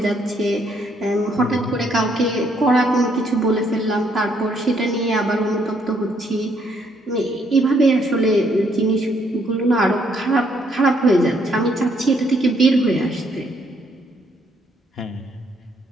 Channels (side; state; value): both; normal; correlation 0.70